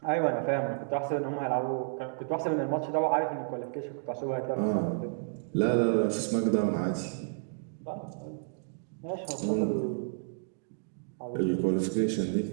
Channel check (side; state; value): left; silent; digital silence